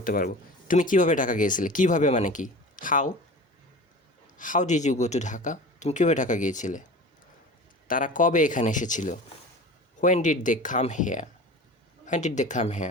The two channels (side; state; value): both; normal; correlation 0.37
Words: পারবো। তুমি কিভাবে ঢাকা গিয়েছিলে, কিভাবে মানে কি, how did you go to Dhaka, তুমি কীভাবে ঢাকা গিয়েছিলে। তারা কবে এখানে এসেছিল, when did they come